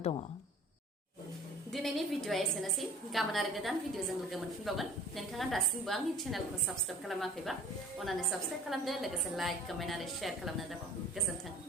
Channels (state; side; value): normal; both; correlation 0.47